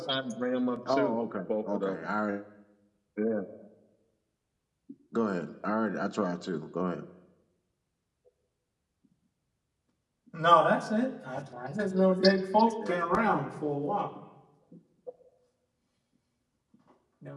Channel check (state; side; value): identical; both; correlation 1.00